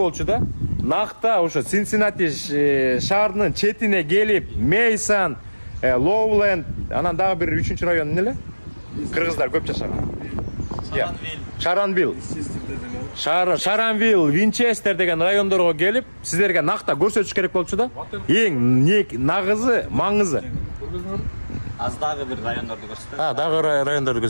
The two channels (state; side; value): inverted; both; correlation -1.00